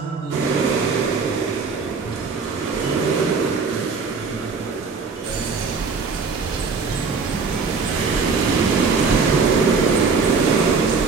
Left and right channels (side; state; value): left; quieter; 4.9 dB